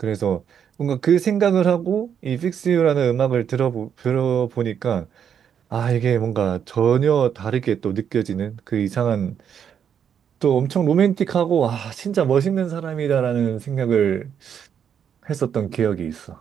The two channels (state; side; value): quieter; left; 8.2 dB